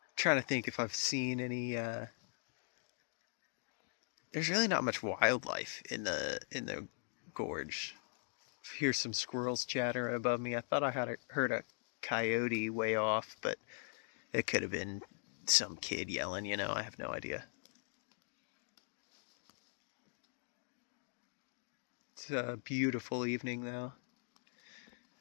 I'm trying to think if I've seen any... There's really not much wildlife in the gorge. Hear some squirrels chatter above me. I thought I had heard a coyote way off, but it could have been some kid yelling, you know, I have no idea. It's a beautiful evening though.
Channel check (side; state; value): right; silent; digital silence